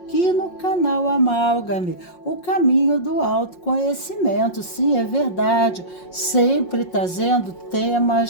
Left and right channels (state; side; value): late; right; 5.6 ms